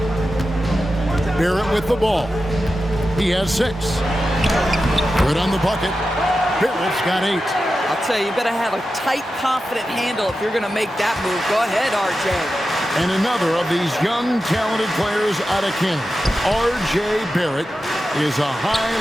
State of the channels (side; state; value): both; normal; correlation 0.91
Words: Barrett with the ball. He has 6. Good on the bucket. Barrett's got 8. I'll tell you, you better have a tight, confident handle if you're going to make that move. Go ahead, RJ. And another of these young, talented players out of Canada. R.J. Barrett is a